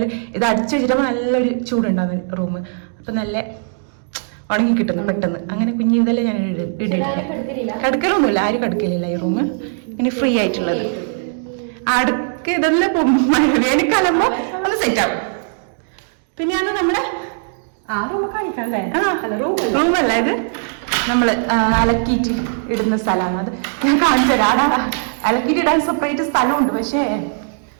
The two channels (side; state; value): left; silent; digital silence